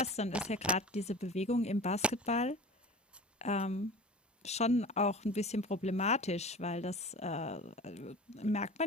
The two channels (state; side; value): normal; both; correlation 0.38